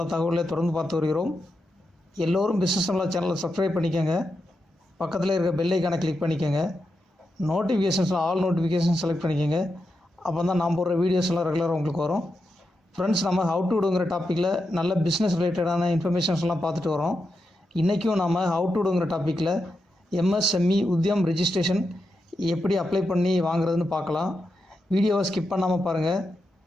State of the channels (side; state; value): both; normal; correlation 0.87